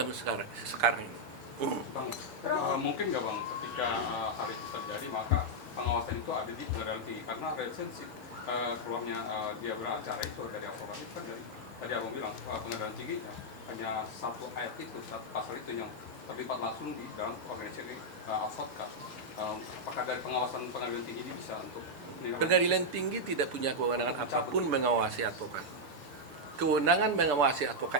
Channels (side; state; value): both; normal; correlation -0.03